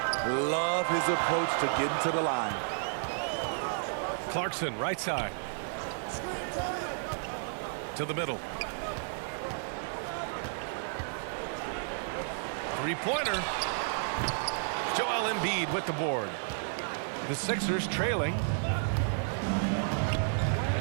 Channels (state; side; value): silent; left; digital silence